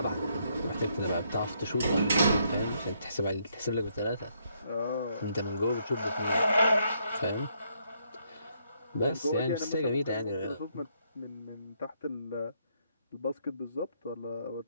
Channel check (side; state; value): both; inverted; correlation -0.73